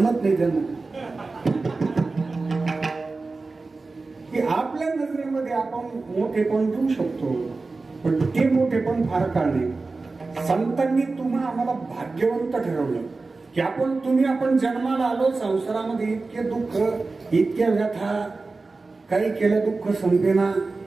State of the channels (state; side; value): quieter; left; 3.7 dB